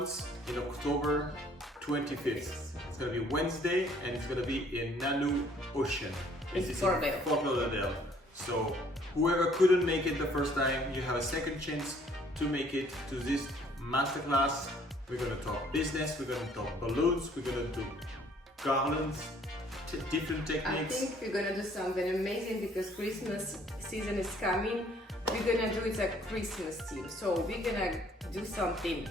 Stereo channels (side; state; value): both; normal; correlation 0.60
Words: in October 25th. It's going to be Wednesday and it's going to be in Nanou Ocean. in Fort Lauderdale. So whoever couldn't make it the first time, you have a second chance to make it to this masterclass. We're going to talk business, we're going to talk balloons, we're going to do garlands, different techniques. I think we're gonna do something amazing because Christmas season is coming. We're gonna do it a Christmas theme. So we're gonna do something